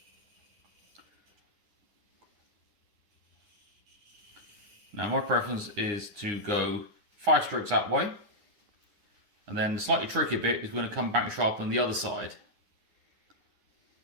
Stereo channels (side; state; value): left; late; 9.9 ms